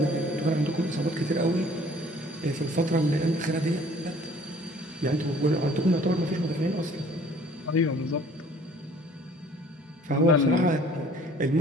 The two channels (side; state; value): both; normal; correlation 0.54